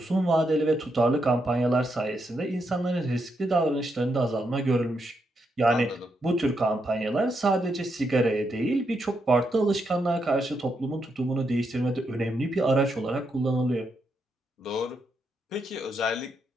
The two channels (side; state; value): both; normal; correlation 0.81